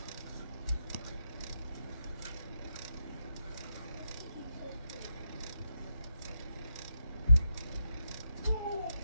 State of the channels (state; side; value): inverted; both; correlation -0.85